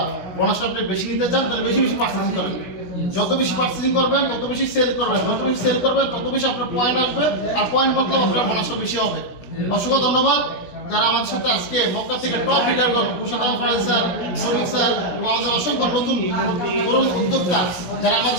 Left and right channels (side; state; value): right; late; 17 ms